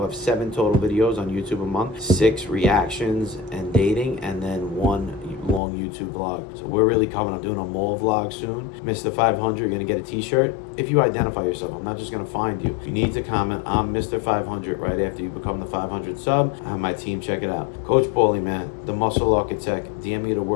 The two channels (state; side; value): drops out; right; at 5.6 s